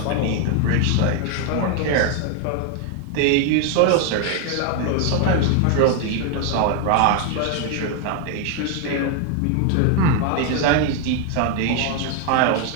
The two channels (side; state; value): both; different; correlation 0.00